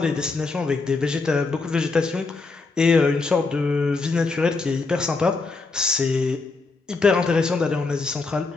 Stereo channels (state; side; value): quieter; right; 3.9 dB